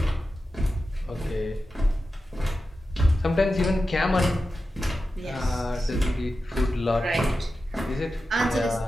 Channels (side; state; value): both; normal; correlation 0.92